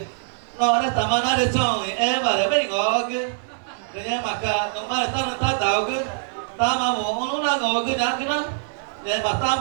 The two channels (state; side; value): silent; left; 60 dB below the other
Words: nó đã tama nó để cho em bảo là bên ngó cái rồi nha mà cái nó mà người ta tạo cái ta mà muốn nó ngó cái nó để mà ta